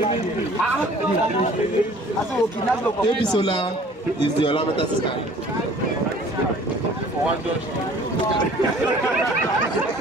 Ebisola is the Olameta sister.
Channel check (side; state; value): both; normal; correlation 0.51